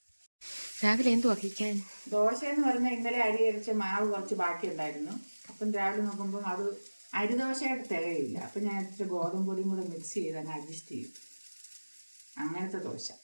രാവിലെ എന്തു വഹിക്കാൻ? ദോശ എന്ന് പറഞ്ഞാൽ ഇന്നലെ അരി അരിച്ച മാവ് കുറച്ച് ബാക്കി ഉണ്ടായിരുന്നു. അപ്പം രാവിലെ നോക്കുമ്പോൾ അത് അരിദോശയായിട്ട് തികയില്ല. അപ്പം ഞാൻ ഇച്ചിരി ഗോതമ്പ് പൊടിയും കൂടെ മിക്സ് ചെയ്ത് അങ്ങ് അഡ്ജസ്റ്റ് ചെയ്യും. അങ്ങനത്തെ ദോശ.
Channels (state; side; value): inverted; both; correlation -1.00